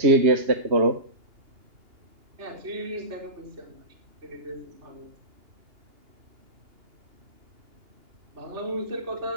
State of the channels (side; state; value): left; late; 2.8 ms